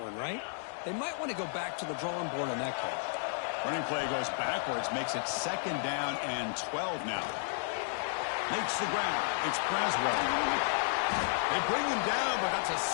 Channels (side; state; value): right; silent; digital silence